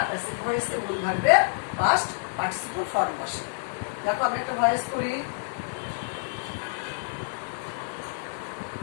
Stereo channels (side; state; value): right; silent; 59 dB below the other